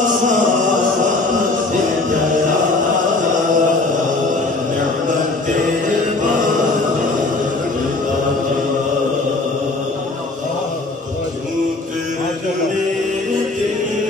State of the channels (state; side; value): quieter; right; 3.2 dB